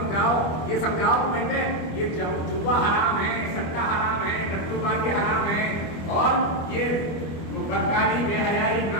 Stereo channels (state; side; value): late; right; 25 ms